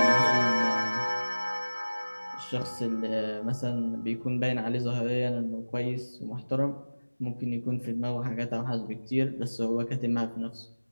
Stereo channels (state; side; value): inverted; both; correlation -1.00